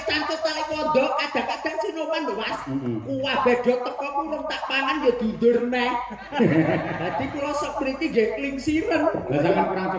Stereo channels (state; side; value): identical; both; correlation 1.00